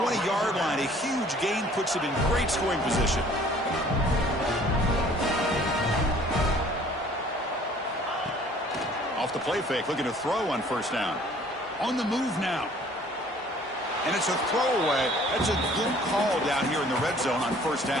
line. A huge gain puts it in great scoring position. Off the play fake, looking to throw on first down. On the move now. And it's a throwaway. That's a good call down here in the red zone on first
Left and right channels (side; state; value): both; normal; correlation 0.54